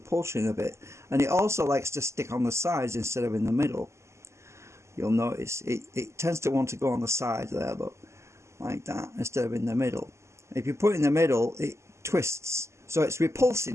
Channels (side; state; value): left; late; 0.13 ms